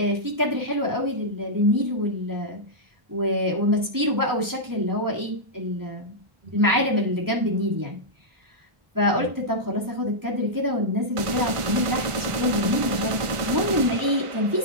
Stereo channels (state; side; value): late; left; 1.5 ms